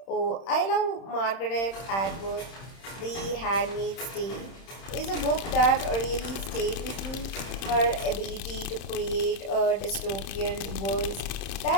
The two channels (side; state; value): right; late; 31 ms